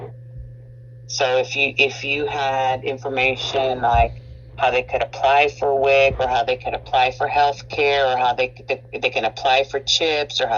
So if you had information like how they could apply for WIC, or how they could apply for health care, or how they can apply for CHIPS, or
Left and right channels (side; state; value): both; identical; correlation 1.00